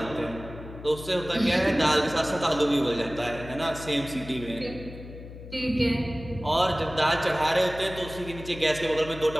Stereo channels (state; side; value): noise; left; hum, 14 dB below the sound